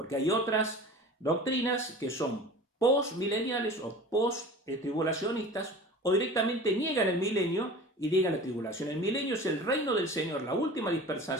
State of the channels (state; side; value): normal; both; correlation 0.39